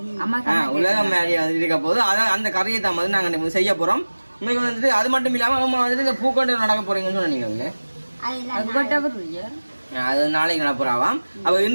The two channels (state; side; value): inverted; both; correlation -1.00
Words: உலகம் மேரியா வந்துட்டு இருக்க போது அதான் அந்த கறியை தான் வந்து நாங்க செய்ய போறோம். இன்னைக்கு வந்துட்டு அது மட்டும் இல்லாம அம்மா வந்துட்டு இந்த பூக்கொண்டு நடக்க போறீங்கன்னு சொன்னீங்க. அது நாளைக்கு நடப்புறாவாம். அப்ப